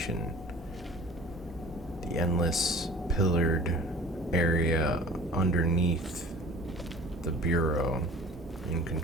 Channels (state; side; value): normal; both; correlation 0.45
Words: The endless pillared area underneath the Bureau in